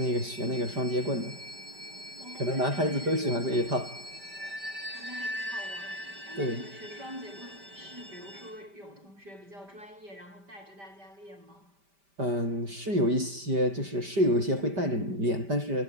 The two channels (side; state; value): left; late; 5.1 ms